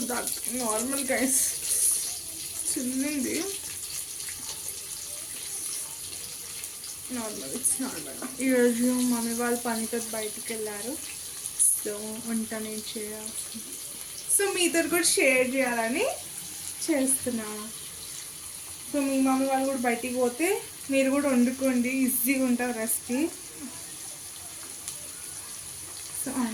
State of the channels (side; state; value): both; identical; correlation 1.00